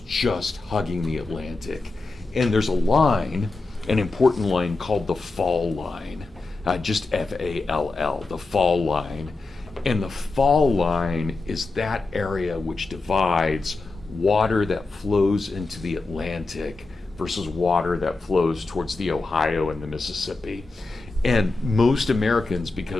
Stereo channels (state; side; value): quieter; right; 3.5 dB